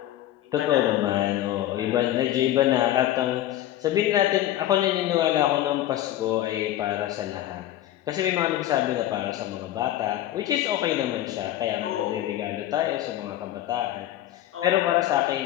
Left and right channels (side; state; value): right; quieter; 13.3 dB